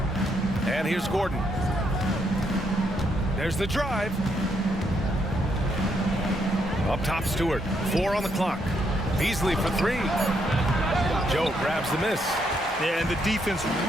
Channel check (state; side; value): normal; both; correlation 0.75